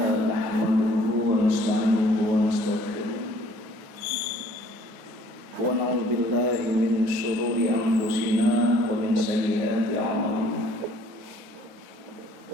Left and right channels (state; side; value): late; left; 9.6 ms